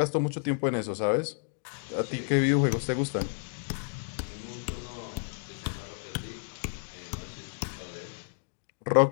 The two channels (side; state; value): right; silent; digital silence